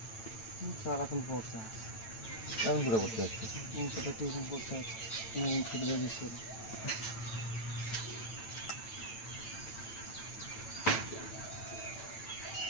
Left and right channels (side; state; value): right; late; 8.9 ms